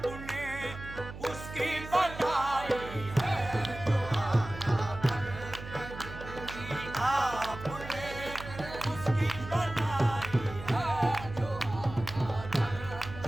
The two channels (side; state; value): right; noise; hum, 12 dB below the sound